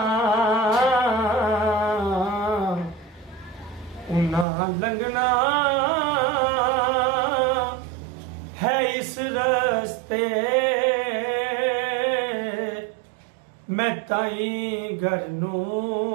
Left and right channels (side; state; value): left; drops out; at 4.5 s